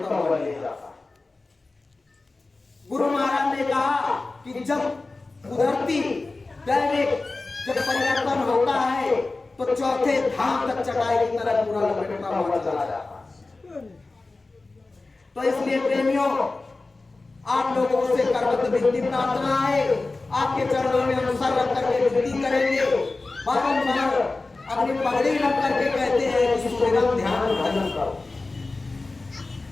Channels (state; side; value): quieter; right; 3.4 dB